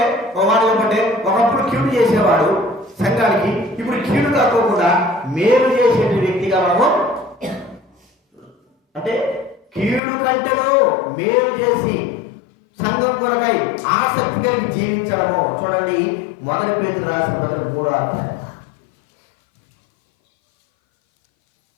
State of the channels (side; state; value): right; drops out; at 10.0 s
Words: వాడు ఏమంటే ఒకప్పుడు కీడు చేసేవాడు సంఘానికి, ఇప్పుడు కీడు కాకోకుండా మేలు చేసే వ్యక్తిగా మనము, అంటే కీడు కంటేనో మేలు చేసి సంఘం కొరకై ఆసక్తి కలిగి జీవించడము. చూడండి, 1 పేతురు రాసిన పత్రిక 3వ అధ్యాయం